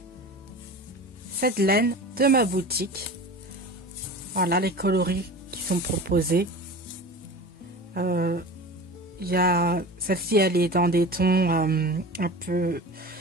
cette laine de ma boutique. Voilà les coloris qui sont proposés. Il y a celle-ci, elle est dans des tons un peu.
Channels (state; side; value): normal; both; correlation 0.34